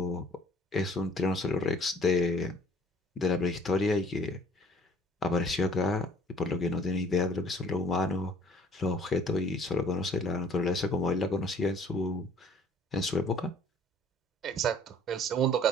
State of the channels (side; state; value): both; normal; correlation 0.56